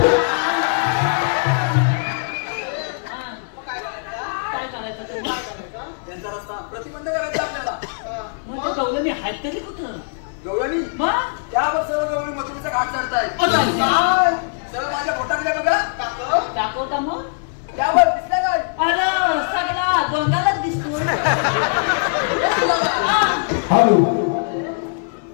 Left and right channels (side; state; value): right; silent; digital silence